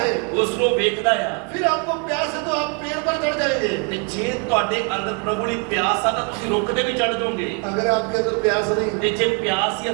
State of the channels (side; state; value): left; quieter; 35.8 dB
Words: है। ਉਸ ਨੂੰ ਵੇਖਦਾ ਆ। फिर आपको प्यास है तो आप पेड़ पर चढ़ जाएंगे। ਤੇ ਜੇ ਤੁਹਾਡੇ ਅੰਦਰ ਪ੍ਰਭੂ ਲਈ ਪਿਆਸ ਆ ਤਾਂ ਤੁਸੀਂ ਰੁੱਖ ਤੇ ਵੀ ਚੜ ਜਾਓਗੇ। अगर आपके अंदर प्यास नहीं ਤੇ ਜੇ ਪਿਆਸ ਹੀ